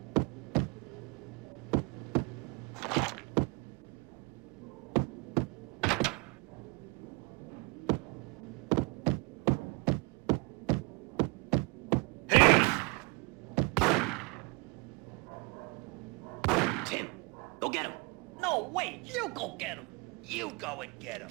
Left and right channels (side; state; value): left; quieter; 28.7 dB